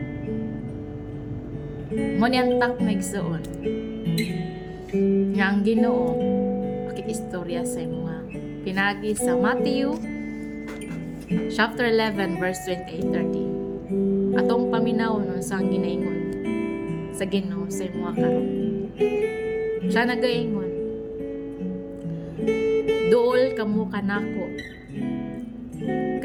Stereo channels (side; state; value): both; identical; correlation 1.00